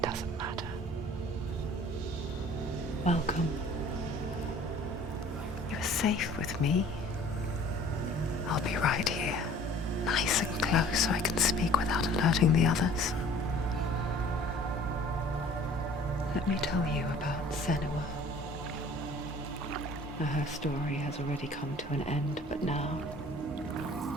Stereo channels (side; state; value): both; normal; correlation 0.50